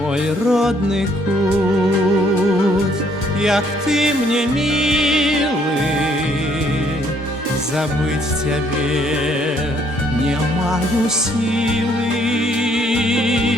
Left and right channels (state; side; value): normal; both; correlation 0.66